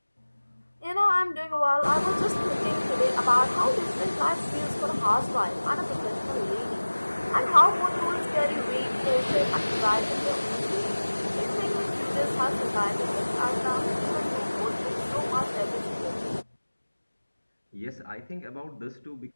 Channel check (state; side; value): inverted; both; correlation -1.00